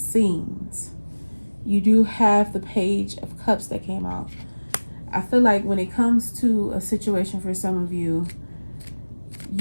You do have the Page of Cups that came out. I feel like when it comes to a situation for some of you,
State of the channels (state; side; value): inverted; both; correlation -1.00